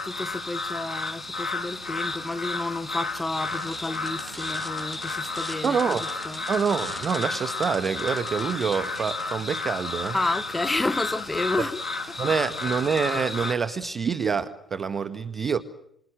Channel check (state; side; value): normal; both; correlation 0.78